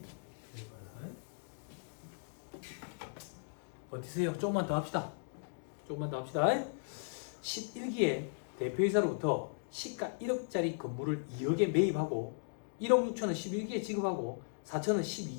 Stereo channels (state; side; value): silent; right; digital silence